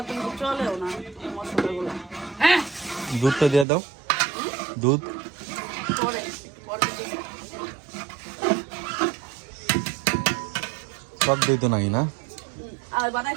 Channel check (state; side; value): drops out; left; at 3.7 s